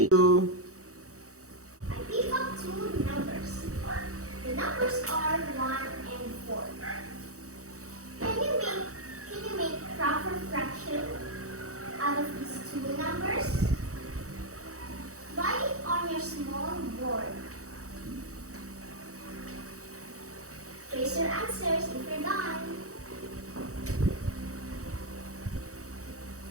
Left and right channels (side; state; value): left; late; 0.65 ms